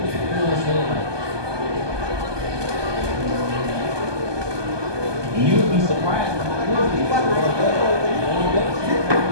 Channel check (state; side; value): late; left; 1.2 ms